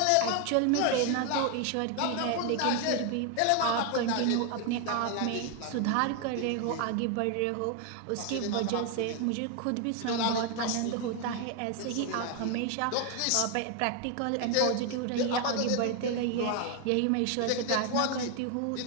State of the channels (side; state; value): both; different; correlation 0.01